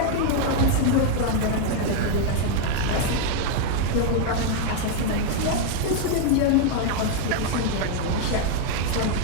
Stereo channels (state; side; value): different; both; correlation 0.00